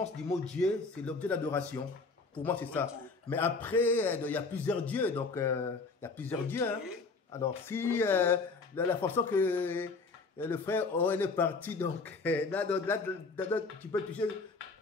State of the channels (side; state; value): right; quieter; 4.1 dB